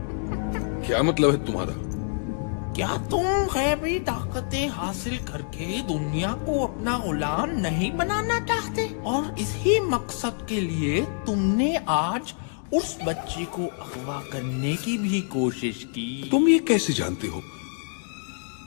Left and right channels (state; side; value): silent; right; 61 dB below the other